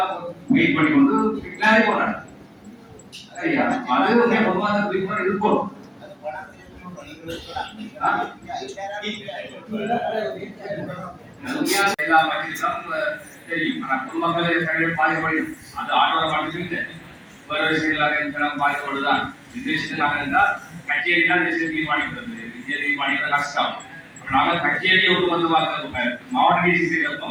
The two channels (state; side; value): identical; both; correlation 1.00